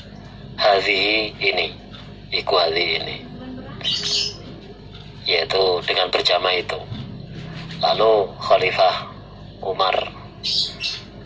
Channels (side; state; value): both; identical; correlation 1.00